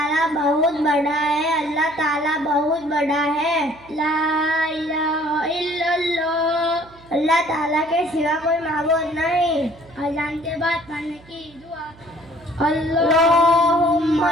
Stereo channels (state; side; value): noise; right; hum, 25 dB below the sound